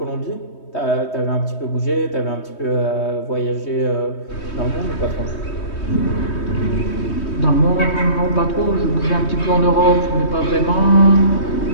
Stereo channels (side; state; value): right; late; 3.2 ms